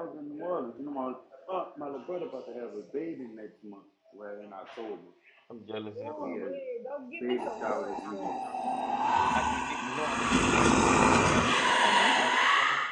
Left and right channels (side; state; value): both; identical; correlation 1.00